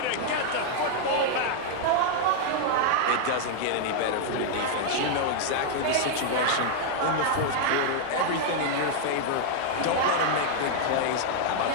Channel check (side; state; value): both; different; correlation -0.01